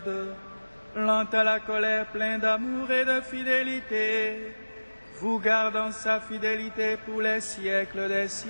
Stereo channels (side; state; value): both; inverted; correlation -1.00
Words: lent à la colère, plein d'amour et de fidélité, vous garde en sa fidélité pour les siècles des